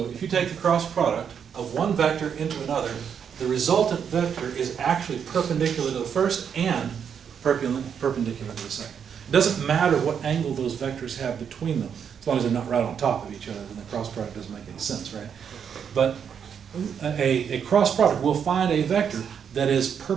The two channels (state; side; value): quieter; left; 7.6 dB